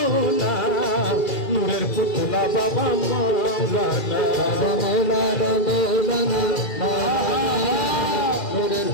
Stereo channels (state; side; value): late; right; 2.3 ms